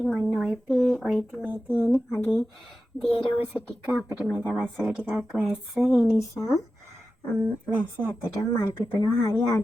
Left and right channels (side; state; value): both; normal; correlation 0.93